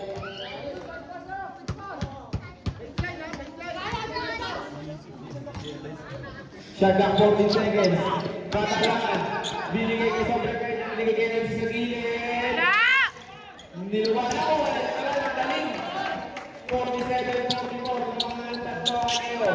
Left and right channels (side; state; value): both; identical; correlation 1.00